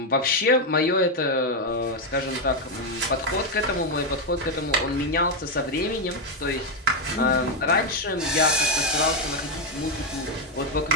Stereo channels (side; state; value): both; normal; correlation 0.04